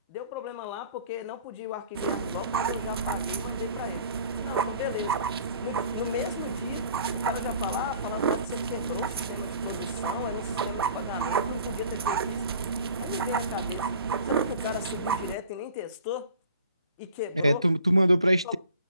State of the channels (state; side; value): inverted; both; correlation -0.50